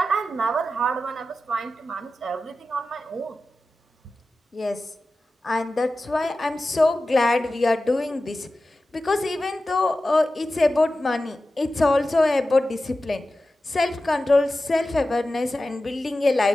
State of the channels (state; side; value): normal; both; correlation 0.94